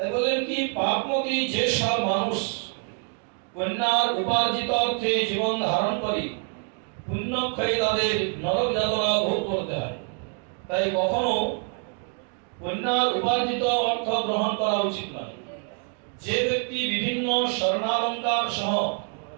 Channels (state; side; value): quieter; left; 39.9 dB